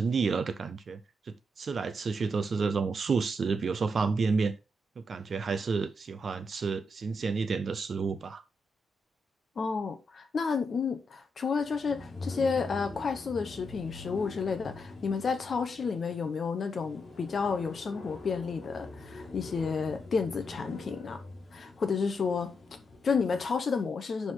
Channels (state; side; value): normal; both; correlation 0.82